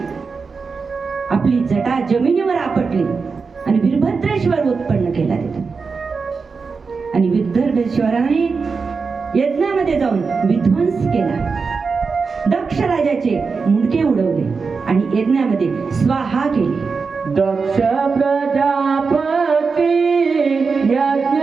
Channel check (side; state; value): left; quieter; 4.9 dB